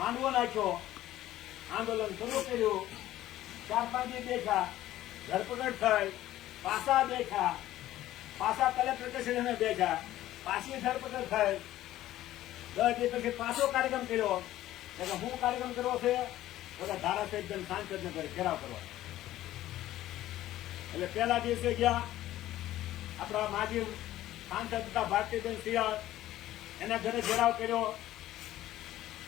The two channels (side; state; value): right; quieter; 14.3 dB